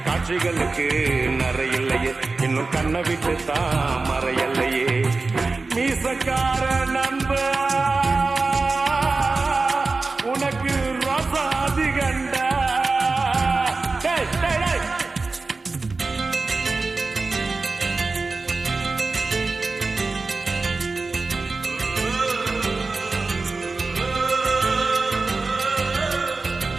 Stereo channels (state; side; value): quieter; left; 3.8 dB